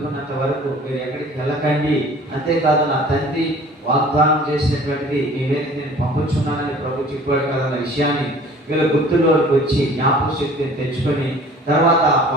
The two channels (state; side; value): normal; both; correlation 0.48